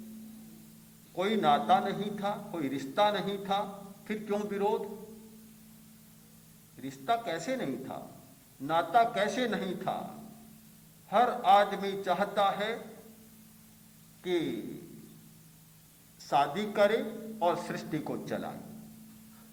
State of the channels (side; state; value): both; identical; correlation 1.00